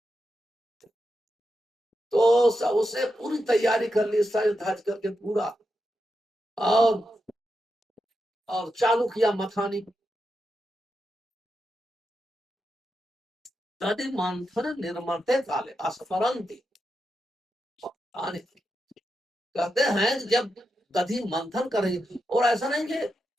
तो उसे पूरी तैयारी कर ली, सज धज करके पूरा, और चालू किया मथानी। तदि मंथन निर्मते काले अस्मरंती। कहते हैं जब दधि मंथन करेगी, और ऐसा नहीं कि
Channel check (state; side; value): normal; both; correlation 0.87